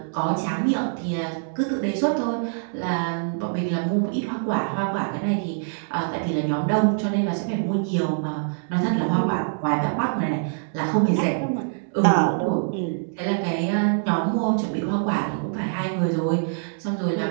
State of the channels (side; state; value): left; silent; digital silence